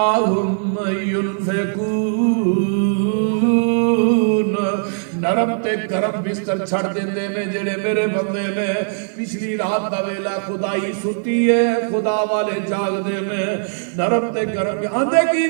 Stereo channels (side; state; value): left; silent; 60 dB below the other